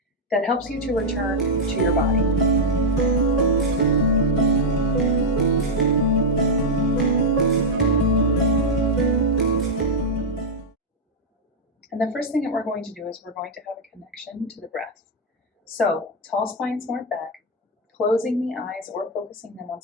that helps you to return to your body. And the first thing that we're going to do is we're going to have a connection to the breath. So, tall spine, smart back, closing the eyes or focusing them on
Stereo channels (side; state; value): both; normal; correlation -0.01